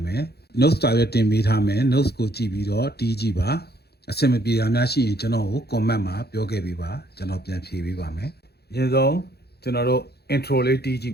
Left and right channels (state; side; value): late; right; 0.47 ms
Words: မယ် notes တာရွက်တင်ပေးထားမယ် notes ကိုကြည့်ပြီးတော့တီးကြည့်ပါအဆင်မပြေတာများရှိရင်ကျွန်တော်ကို comment မှာပြောခဲ့ပေးပါကျွန်တော်ပြန်ဖြေပေးပါမယ်အရင်ဆုံးကျွန်တော်တို့ intro လေးတီးကြည့